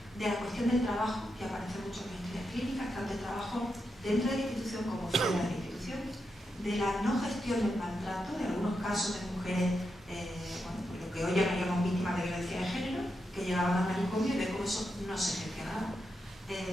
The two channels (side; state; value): both; normal; correlation 0.85